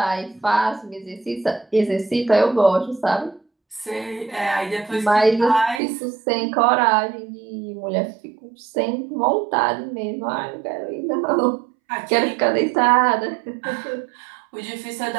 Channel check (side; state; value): left; drops out; at 5.8 s